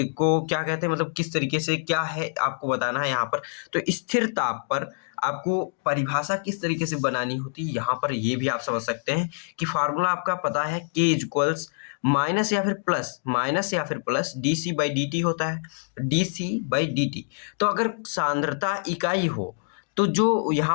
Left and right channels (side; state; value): right; silent; digital silence